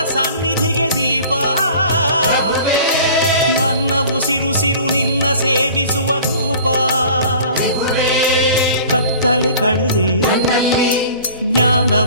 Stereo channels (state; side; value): inverted; both; correlation -0.45